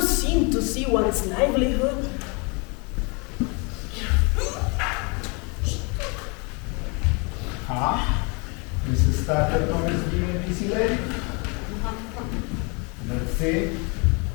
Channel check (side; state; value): right; quieter; 32.0 dB